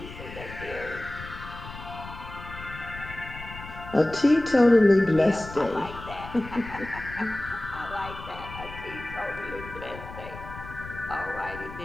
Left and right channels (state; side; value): noise; left; rumble, 13 dB below the sound